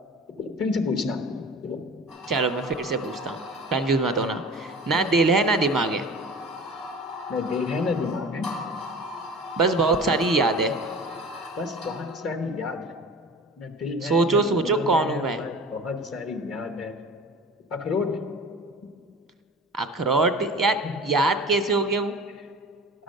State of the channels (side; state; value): both; normal; correlation 0.39